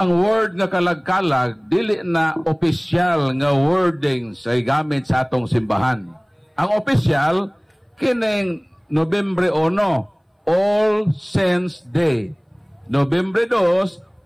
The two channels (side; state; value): both; identical; correlation 1.00